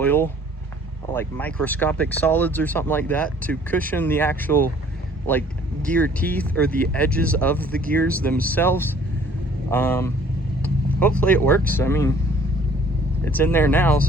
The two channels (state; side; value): normal; both; correlation 0.56